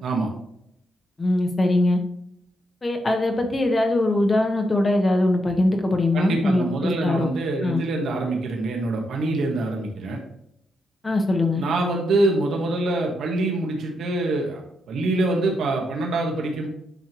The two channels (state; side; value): normal; both; correlation 0.81